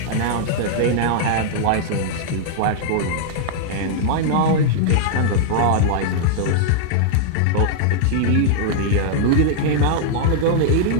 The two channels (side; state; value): both; different; correlation -0.01